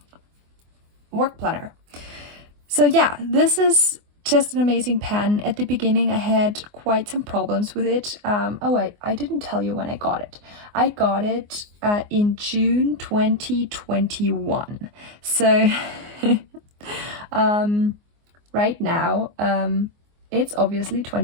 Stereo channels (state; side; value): late; left; 24 ms